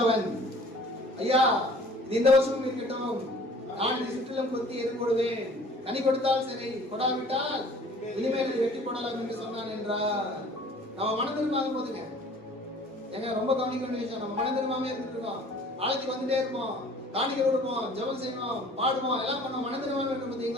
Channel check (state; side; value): normal; both; correlation 0.50